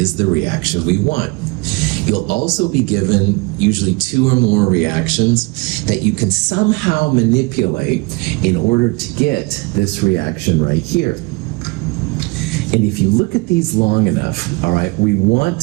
the reaction we want. You'll also be given usually two or more reactions that you can somehow manipulate in order to get this reaction right here. And if you look at these long enough, all right, we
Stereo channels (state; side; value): quieter; left; 26.3 dB